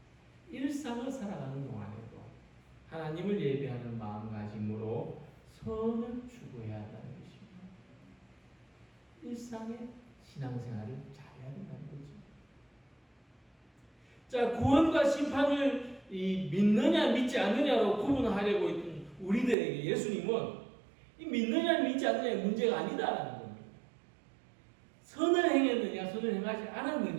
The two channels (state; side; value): drops out; left; at 19.6 s